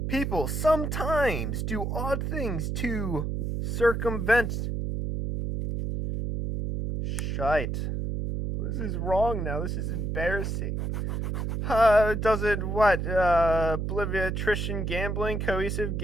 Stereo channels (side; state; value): right; noise; hum, 2 dB below the sound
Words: People sometimes do odd things to circumvent. Shite. This is wrong now. This is embarrassing. Doesn't what? Obliviatrition gambling, cohesive